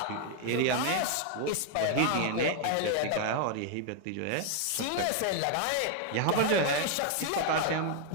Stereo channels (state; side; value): different; both; correlation 0.00